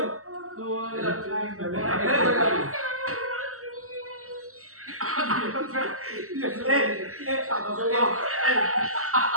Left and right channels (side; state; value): left; late; 0.64 ms